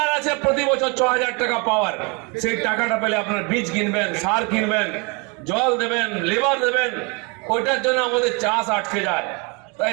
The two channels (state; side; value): quieter; left; 31.0 dB